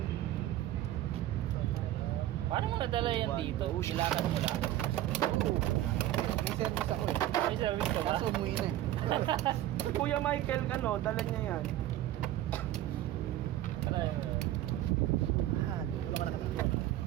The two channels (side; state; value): left; quieter; 13.9 dB